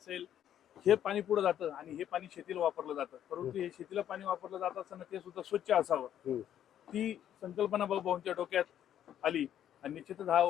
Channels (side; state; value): right; quieter; 10.5 dB